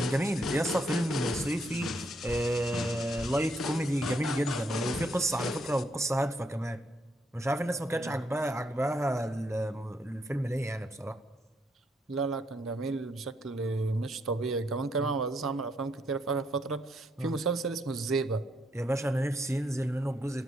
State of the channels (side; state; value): both; normal; correlation 0.75